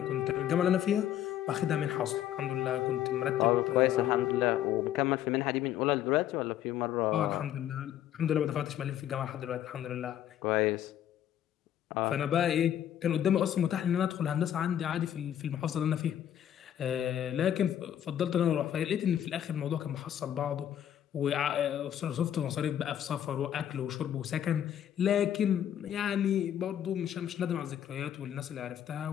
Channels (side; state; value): right; quieter; 10.8 dB